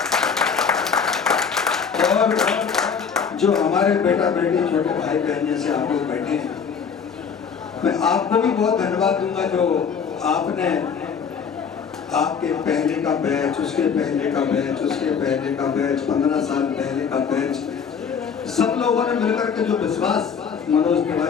और जो हमारे बेटा बेटी छोटे भाई बहन जैसे आप लोग बैठे हैं, मैं आपको भी बहुत धन्यवाद दूंगा जो आपने आपके पहले का बैच, उसके पहले का बैच, उसके पहले का बैच, 15 साल पहले का बैच, सब लोगों ने मिलकर के जो विश्वास मनोज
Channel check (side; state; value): right; quieter; 6.5 dB